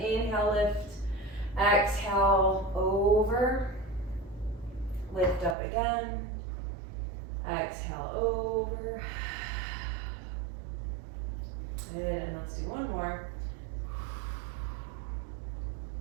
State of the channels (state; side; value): drops out; left; at 5.6 s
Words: inhale, lift, exhale, over, lift up again, exhale, over. Good, and let's do one more.